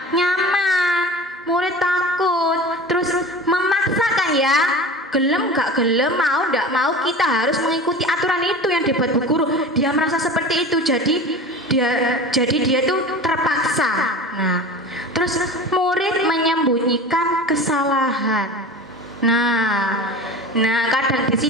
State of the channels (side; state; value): both; normal; correlation 0.34